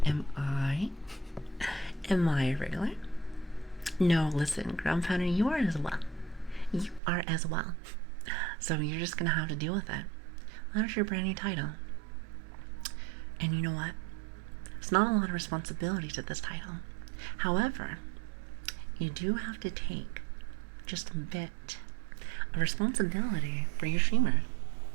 am I a regular? No, listen, Ground Pounder, you are as well. So you're just gonna have to deal with it. That's your brand new title. And you know what? It's not a lot of responsibility to this title. However, you do have to take just a bit a responsibility for your streamer.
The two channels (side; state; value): left; drops out; at 7.0 s